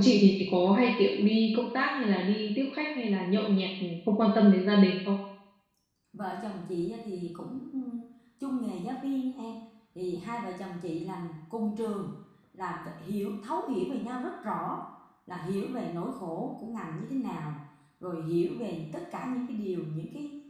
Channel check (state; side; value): identical; both; correlation 1.00